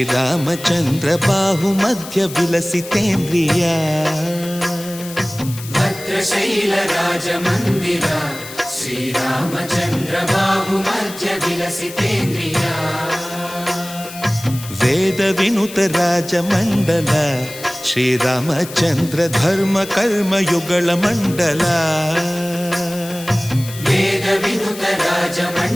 ಬಾಹು ಮಧ್ಯ ವಿಲಸಿತೇಂದ್ರಿಯ ಭದ್ರಶೈಲ ರಾಜ ಮಂದಿರ ಶ್ರೀರಾಮಚಂದ್ರ ಬಾಹು ಮಧ್ಯ ವಿಲಸಿತೇಂದ್ರಿಯ ವೇದ ವಿನುತ ರಾಜ ಮಂಡಲ ಶ್ರೀರಾಮಚಂದ್ರ ಧರ್ಮ ಕರ್ಮ ಯುಗಳ ಮಂಡಲ ವೇದ ವಿನುತ ರಾಜ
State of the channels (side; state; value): left; noise; hiss, 14 dB below the sound